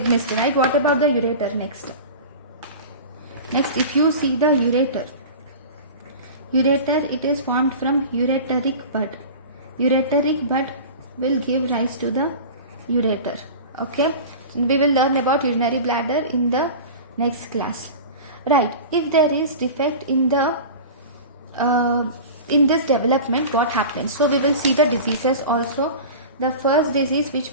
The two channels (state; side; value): inverted; both; correlation -0.34